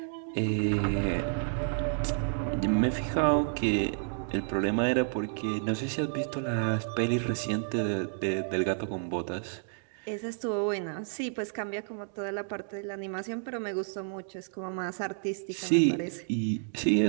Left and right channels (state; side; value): silent; left; digital silence